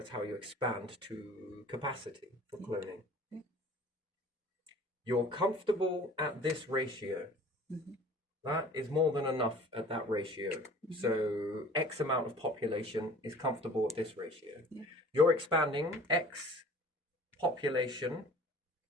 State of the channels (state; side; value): normal; both; correlation 0.47